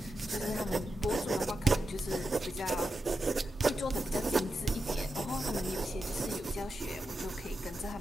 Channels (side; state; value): both; normal; correlation 0.88